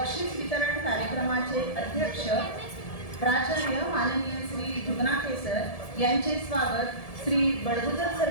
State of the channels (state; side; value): late; right; 1.7 ms